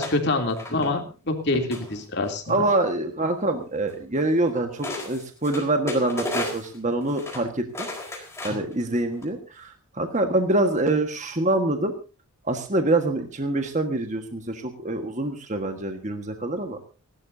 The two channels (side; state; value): both; normal; correlation 0.21